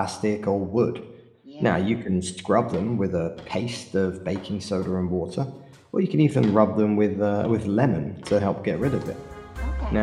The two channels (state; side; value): identical; both; correlation 1.00